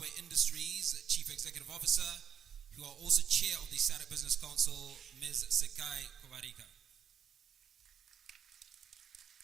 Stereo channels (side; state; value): left; quieter; 8.4 dB